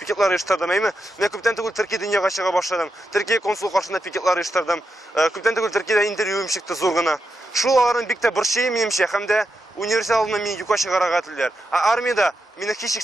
оештырдым, әйме? Мен күптән түгел Төркия дөньяга чыга башладым. Төркия консул каршында пикетлар оештырдым. Күптән түгел Төркиядә интервьюым чыкты зур гына. Шул аларның бик тә борчый минемчә, һәм дә университет алдында мине юкка чыгарга телиләр. Армиядә мине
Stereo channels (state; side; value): normal; both; correlation 0.86